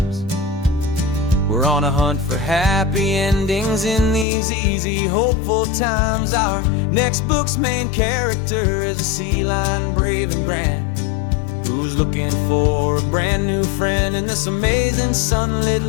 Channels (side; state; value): right; drops out; at 4.2 s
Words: We're on a hunt for happy endings in these easy, hopeful times. Our next book's main character is a sea lion, brave and grand, who's looking for a brand new friend in this amazing sunlit